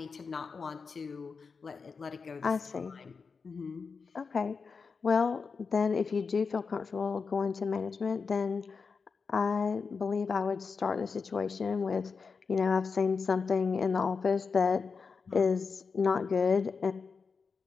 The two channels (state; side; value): quieter; right; 5.1 dB